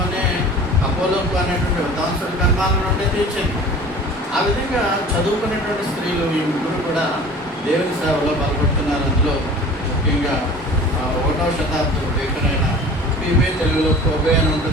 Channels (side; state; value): both; normal; correlation 0.42